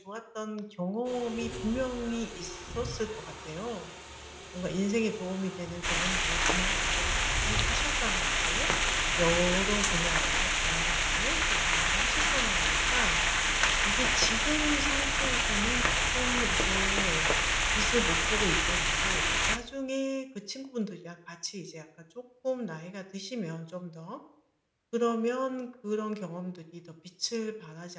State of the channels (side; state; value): both; identical; correlation 1.00